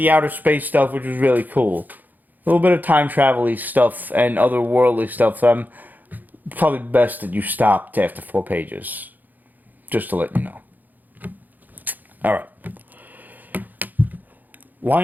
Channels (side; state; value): left; late; 0.084 ms